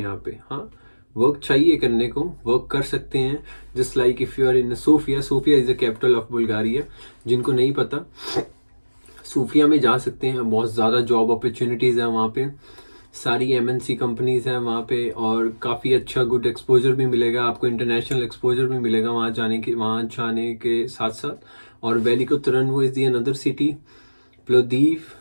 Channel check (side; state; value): both; inverted; correlation -1.00